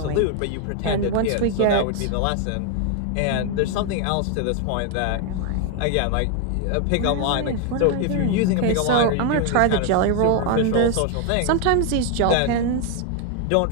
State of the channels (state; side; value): different; both; correlation 0.00